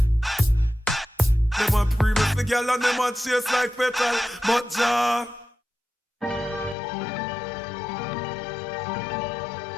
them a previous the girl and them a chase like petal. But Jah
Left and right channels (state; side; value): drops out; right; at 6.8 s